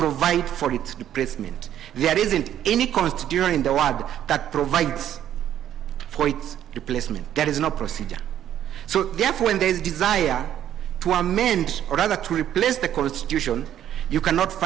for its replacement. There isn't any constitution in the world that provides for its replacement. There is no procedure. So therefore, when there is desire to amend, or rather to replace the constitution, you cannot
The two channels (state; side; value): quieter; left; 10.9 dB